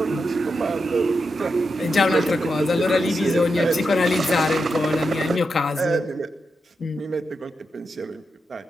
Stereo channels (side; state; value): both; normal; correlation 0.86